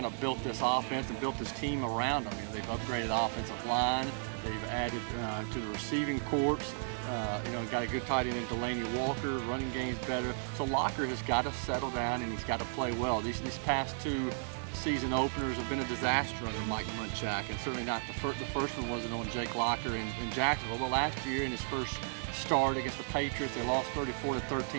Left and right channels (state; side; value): silent; left; digital silence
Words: of built this offense and built this team around him. You know, they've upgraded the offensive line. They've added to the receiving corps. Got a good tight end in Delaney Walker. Running game's better. So Locker has got to settle down and he's got to play well. These past 2 season openers have been a disaster under Mike Munchak, and certainly not the first one wasn't on Jake Locker in Jacksonville. But last year in his first start against the Patriots, they lost